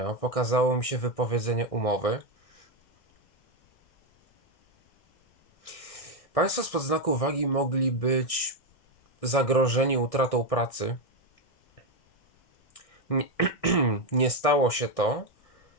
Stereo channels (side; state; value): right; late; 1.6 ms